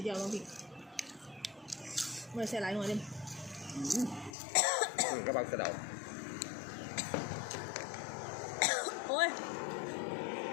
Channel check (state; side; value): drops out; right; at 4.4 s